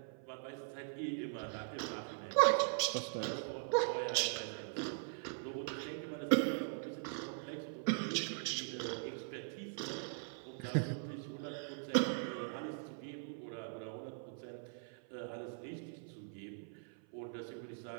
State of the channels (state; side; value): silent; left; 50 dB below the other